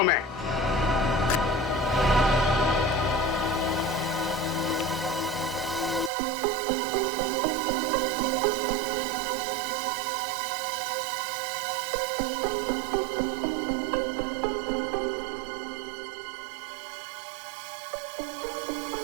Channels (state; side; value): drops out; left; at 6.1 s